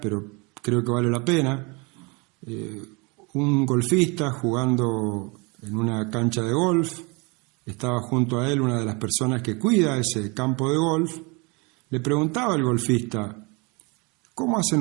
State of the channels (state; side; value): quieter; left; 29.3 dB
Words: pero creo que vale la pena. Un golfista jugando en una cancha de golf, estaba junto a él una de las personas que cuida ese campo de golf. Le preguntaba al golfista: ¿cómo hacen